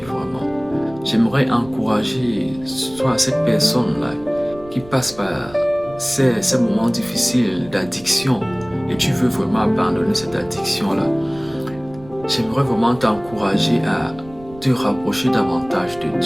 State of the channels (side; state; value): right; noise; rumble, 20 dB below the sound